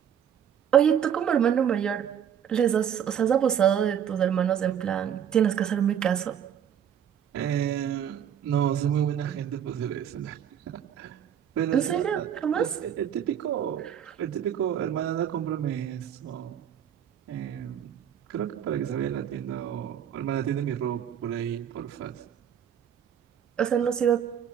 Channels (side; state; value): left; quieter; 9.0 dB